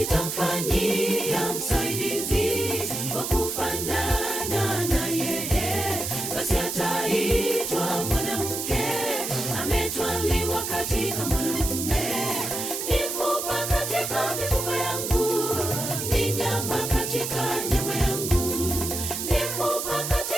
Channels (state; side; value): noise; right; hiss, 4 dB below the sound